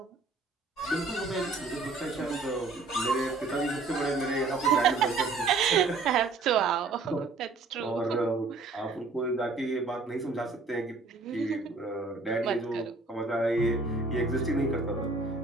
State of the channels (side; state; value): left; quieter; 3.8 dB